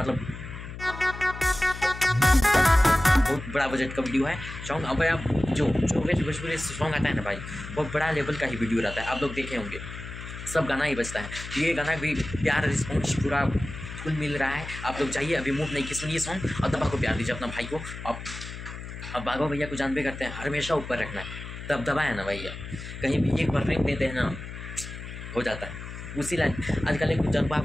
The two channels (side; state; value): left; noise; hum, 10 dB below the sound